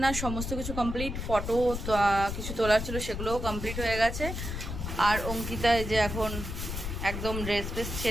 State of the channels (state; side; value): noise; left; rumble, 5 dB below the sound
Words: সমস্ত কিছু কমপ্লিট। ফটো কিছু তোলার ছিল, সেগুলোও কমপ্লিট হয়ে গেছে। আর অঙ্কিতা এই যে এখন একদম ড্রেস ফ্রেস